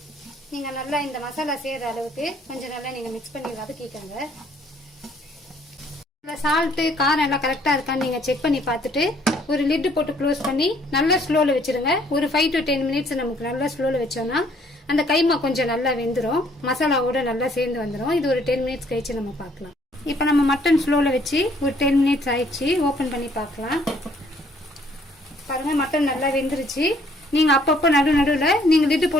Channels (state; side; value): normal; both; correlation 0.63